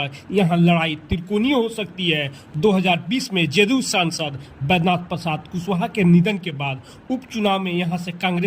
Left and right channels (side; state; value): both; identical; correlation 1.00